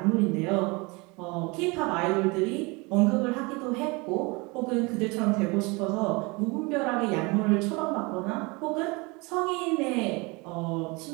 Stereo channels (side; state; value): left; quieter; 26.9 dB